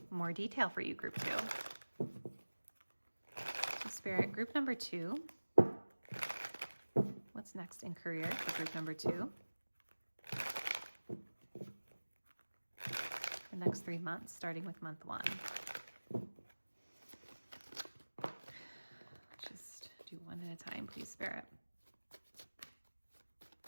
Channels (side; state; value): both; inverted; correlation -1.00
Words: more detail for you, group 2. Spirit, group number 2. What's next in career for group number 2? The next 3 months, starting with month 1. Just do one at a time, please, Spirit.